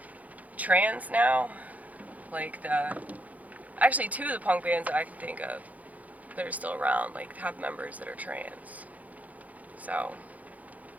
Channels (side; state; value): left; late; 0.075 ms